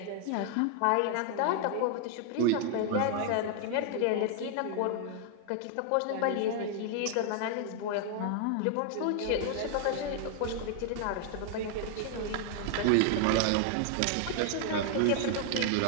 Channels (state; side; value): different; both; correlation 0.00